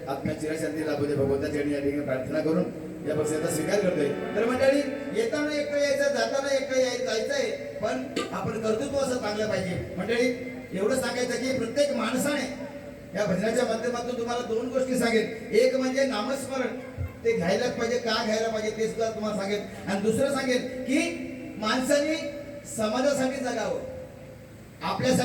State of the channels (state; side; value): identical; both; correlation 1.00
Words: आत्म्या चिरशांती लाभू दे भगवंताच्या चरणी या ठिकाणी प्रार्थना करून या पक्षाचा स्वीकार करतोय. तर मंडळी, येताना एकटं यायचं, जाताना एकटं जायचंय, पण आपण कर्तृत्व असं चांगलं पाहिजे. मंडळी, एवढं सांगायचं की प्रत्येक माणसाने या भजनाच्या माध्यमातून तुम्हाला 2 गोष्टी सांगेन. एक म्हणजे नामस्मरण, ते घ्यायलाच पाहिजे. का घ्यायला पाहिजे ते सुद्धा तुम्हाला सांगेन. आणि दुसरं सांगेन की माणसाने समाजासाठी जगावं,